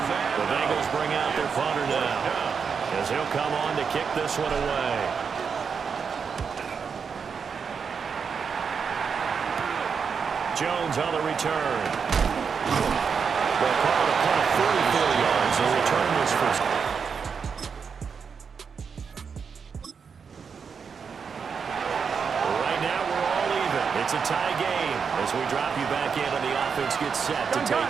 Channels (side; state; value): left; quieter; 6.1 dB